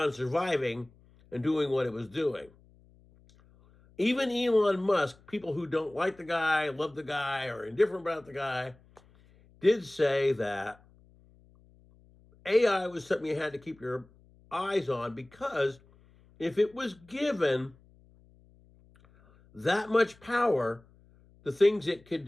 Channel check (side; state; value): left; noise; hum, 28 dB below the sound